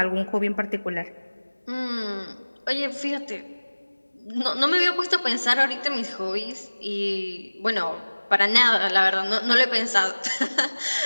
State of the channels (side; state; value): both; inverted; correlation -1.00